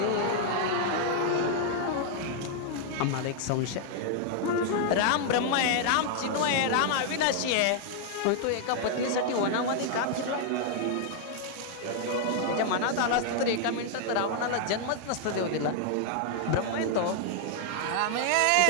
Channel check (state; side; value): different; both; correlation 0.00